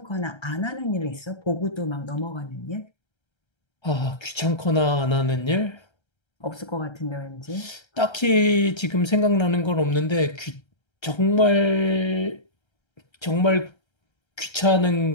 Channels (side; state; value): right; late; 1.3 ms